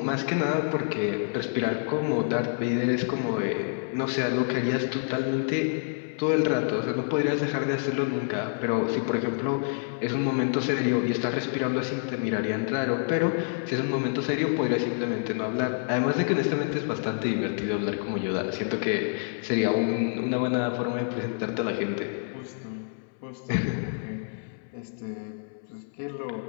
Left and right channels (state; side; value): silent; right; 60 dB below the other